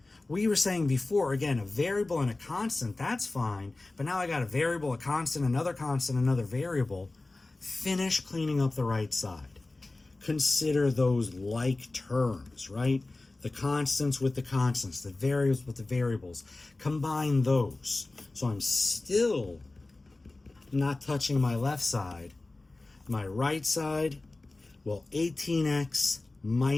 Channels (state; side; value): quieter; right; 3.1 dB